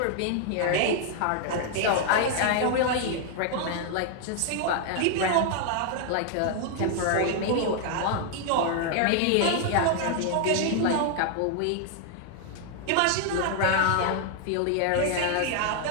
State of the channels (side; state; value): both; different; correlation 0.00